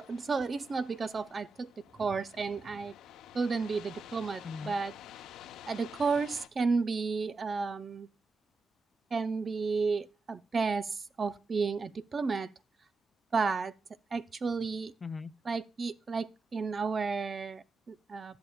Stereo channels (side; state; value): left; quieter; 4.1 dB